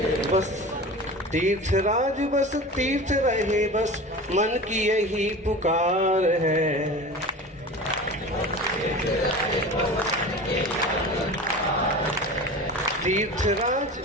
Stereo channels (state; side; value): normal; both; correlation 0.34